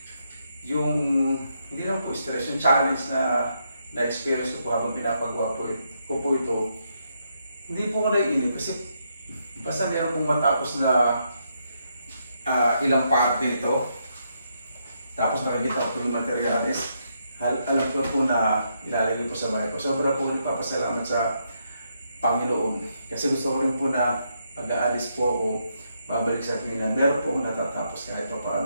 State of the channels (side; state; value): both; inverted; correlation -0.78